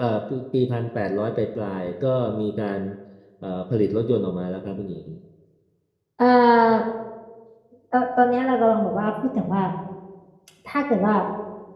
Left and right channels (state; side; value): identical; both; correlation 1.00